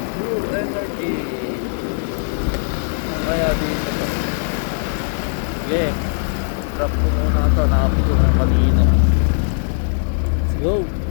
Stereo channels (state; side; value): silent; right; digital silence